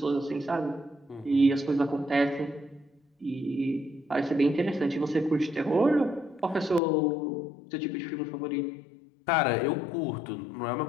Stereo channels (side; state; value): right; drops out; at 6.8 s